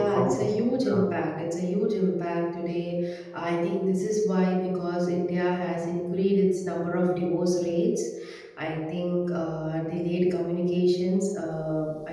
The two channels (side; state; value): both; identical; correlation 1.00